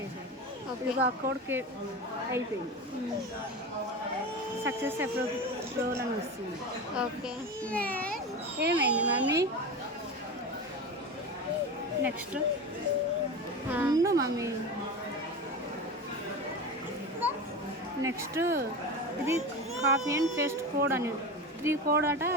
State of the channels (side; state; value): both; normal; correlation 0.26